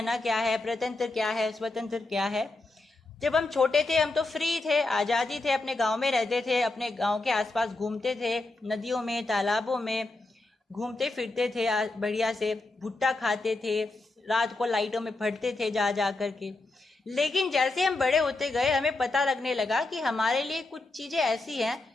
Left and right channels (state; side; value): quieter; right; 3.1 dB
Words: क्या है, प्रतंत्र क्या है, स्वतंत्र क्या है। जब हम छोटे थे हम तो फ्री थे, आजादी थे, अपने गांव में रहते थे, अपने गांव के आसपास घूमते थे, नदियों में, तालाबों में घूमते फिरते थे, बढ़िया से भुट्टा खाते थे, रात को लाइटों में पढ़ते थे जा जा करके। लेकिन जैसे हम बड़े होते गए हमें पता लगने लगा कि हमारे लिए कुछ चीजें ऐसी हैं